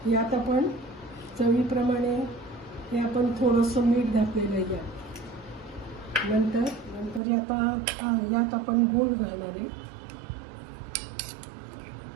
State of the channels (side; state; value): left; drops out; at 7.2 s